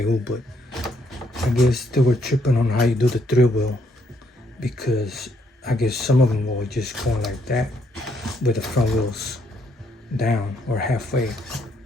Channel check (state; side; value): normal; both; correlation 0.72